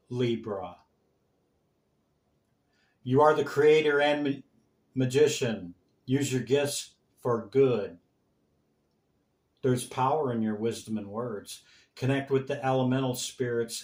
Libra. You are the creator and magician. Use your gifts for good. There's power in your wisdom and words. Connect with the elemental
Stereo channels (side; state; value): both; identical; correlation 1.00